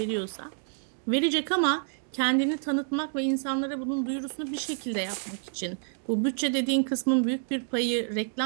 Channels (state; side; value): silent; left; 59 dB below the other